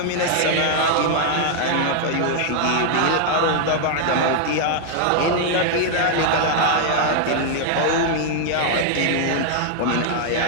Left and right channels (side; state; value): both; different; correlation 0.00